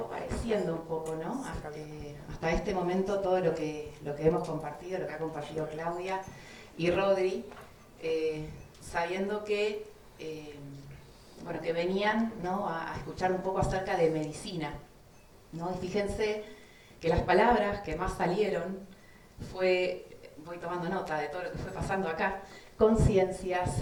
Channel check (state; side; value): identical; both; correlation 1.00